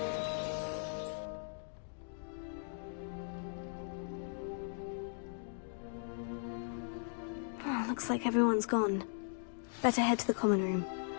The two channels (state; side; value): silent; right; digital silence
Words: Oh, looks like everyone's gone. Better head to the common room.